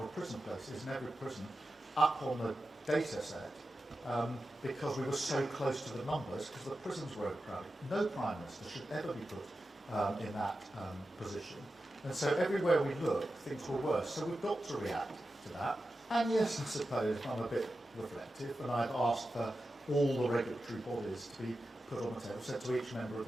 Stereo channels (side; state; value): both; normal; correlation 0.92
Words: of prison places in every prison up on the data set because we were so close to the numbers, because the prisons were overcrowded. No Prime Minister should ever be put in that position. And so everywhere we look, things were worse. So we've got to react to that. And yes, I suppose I'm a bit reflective, and I've asked for all the regulatory bodies to be put on the table. Said to each member of